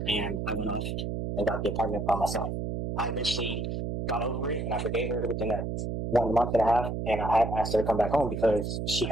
and I went off and got the apartment by myself. I eventually got over it, and I forgave her within that 1 month and a half, and I had asked her to come back home because she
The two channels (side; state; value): right; noise; hum, 3 dB below the sound